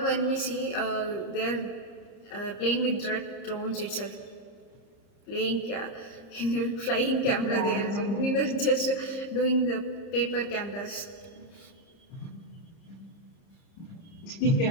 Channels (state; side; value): late; right; 30 ms